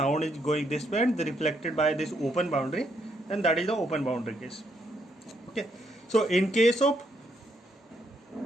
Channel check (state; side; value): normal; both; correlation 0.75